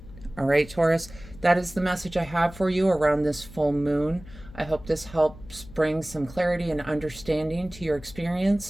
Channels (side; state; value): left; noise; hum, 17 dB below the sound